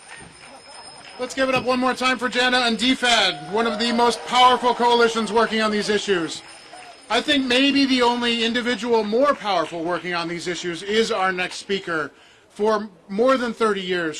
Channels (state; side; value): identical; both; correlation 1.00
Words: Let's give it up one more time for Jana and DFAD, one of the most powerful coalitions working on these issues. I think maybe the only individual more powerful working on these issues is our next speaker. For more than 30 years,